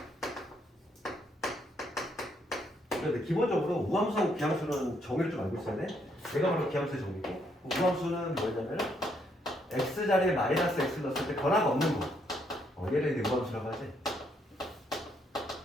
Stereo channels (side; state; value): both; normal; correlation 0.73